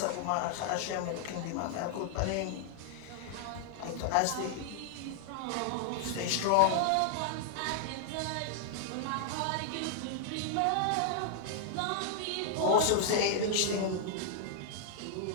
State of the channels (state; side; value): different; both; correlation -0.01